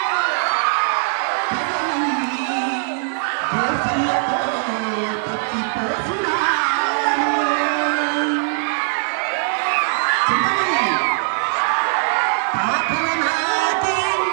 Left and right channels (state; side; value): silent; left; 66 dB below the other